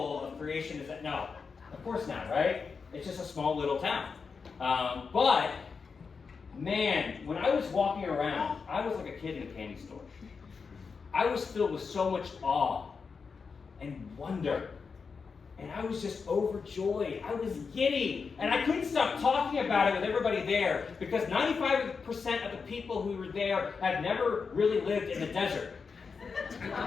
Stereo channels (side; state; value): right; quieter; 5.3 dB